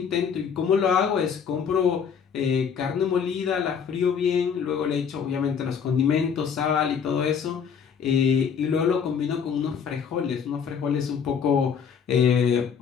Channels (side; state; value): right; quieter; 6.9 dB